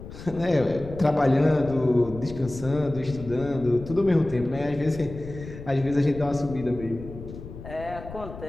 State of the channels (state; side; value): noise; left; rumble, 13 dB below the sound